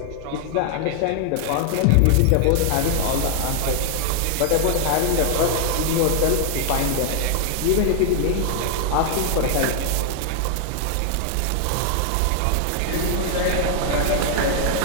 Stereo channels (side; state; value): both; different; correlation 0.00